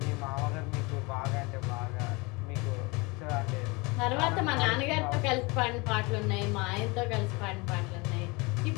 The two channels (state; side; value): quieter; right; 26.5 dB